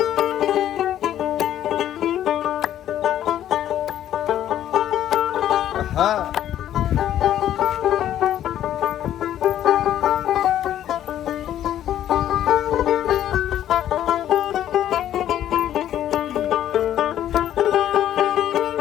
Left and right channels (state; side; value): quieter; right; 11.5 dB